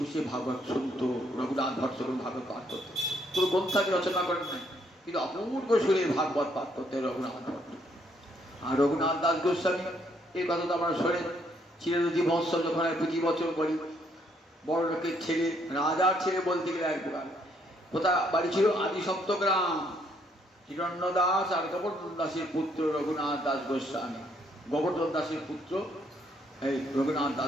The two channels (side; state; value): both; normal; correlation 0.70